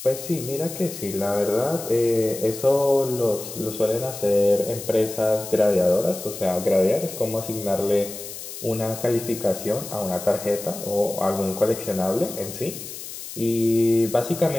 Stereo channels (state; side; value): noise; left; hiss, 11 dB below the sound